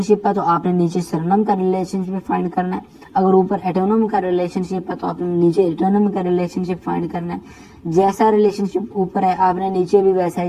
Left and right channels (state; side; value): identical; both; correlation 1.00